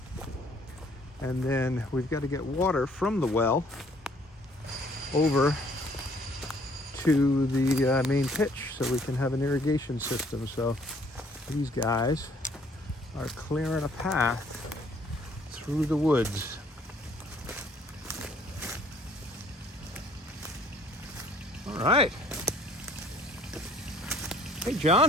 then we've got to get water from the well over to the main pitch so we can have an irrigation system. So these guys are clearing a path through the woods. All right. Hey,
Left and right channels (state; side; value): normal; both; correlation 0.60